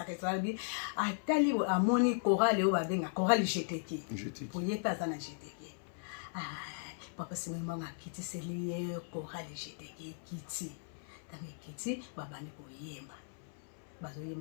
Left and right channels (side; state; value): right; silent; 53 dB below the other